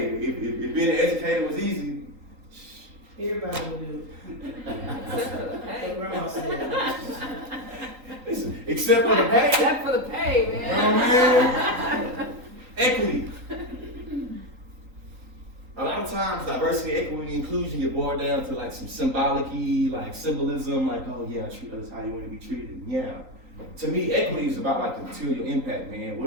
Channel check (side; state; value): left; late; 3.9 ms